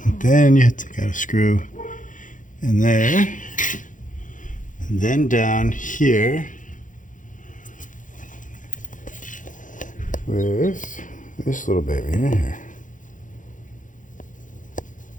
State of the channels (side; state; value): right; late; 0.38 ms